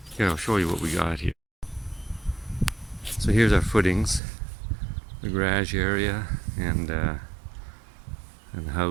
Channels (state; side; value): drops out; left; at 4.2 s